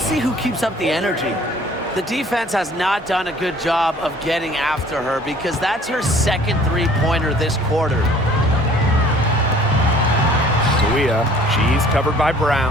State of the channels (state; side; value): normal; both; correlation 0.53